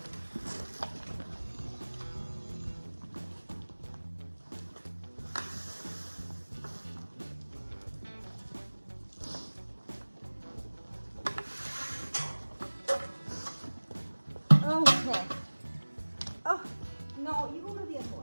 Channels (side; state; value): both; inverted; correlation -1.00